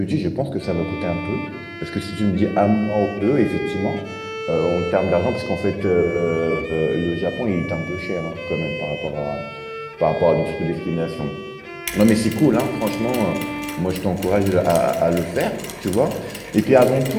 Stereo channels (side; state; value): both; identical; correlation 1.00